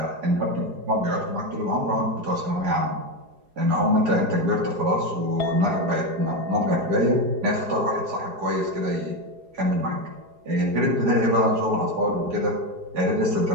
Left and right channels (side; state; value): left; late; 4.8 ms